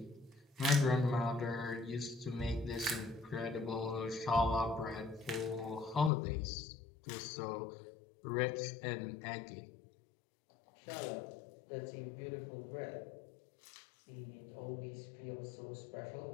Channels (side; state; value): right; drops out; at 6.1 s